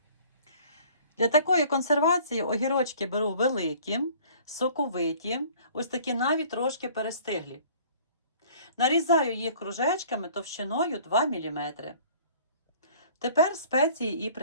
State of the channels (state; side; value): inverted; both; correlation -0.51